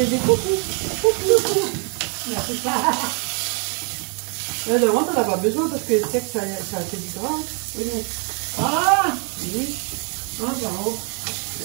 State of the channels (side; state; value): left; quieter; 37.4 dB